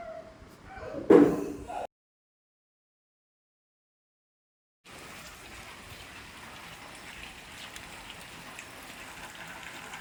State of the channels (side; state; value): both; identical; correlation 1.00